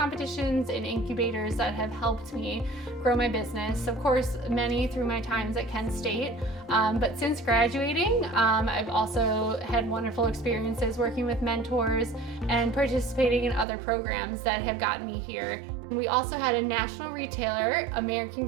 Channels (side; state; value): left; drops out; at 13.7 s